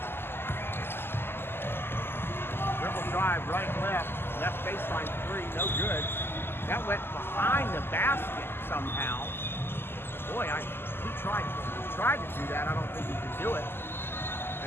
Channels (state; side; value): late; right; 0.11 ms